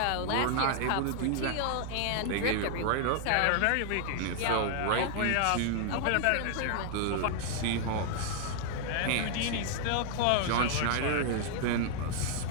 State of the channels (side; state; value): both; different; correlation 0.00